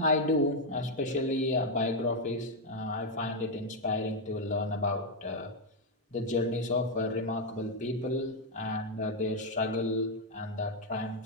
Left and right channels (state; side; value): normal; both; correlation 0.01